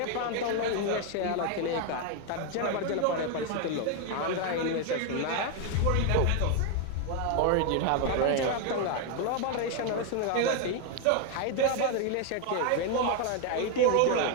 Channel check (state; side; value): different; both; correlation 0.01